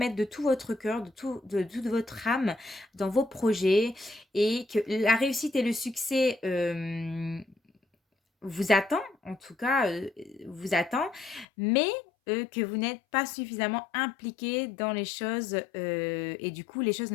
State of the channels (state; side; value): drops out; right; at 11.5 s